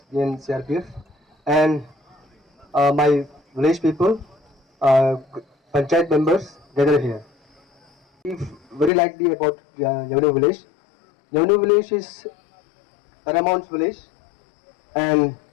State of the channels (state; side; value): drops out; right; at 8.9 s